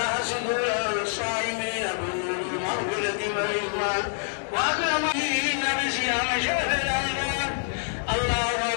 صدور الصائمين بنور المغفرة والرضوان وأكرمين بصيام شهر رمضان. الله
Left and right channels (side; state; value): right; silent; 59 dB below the other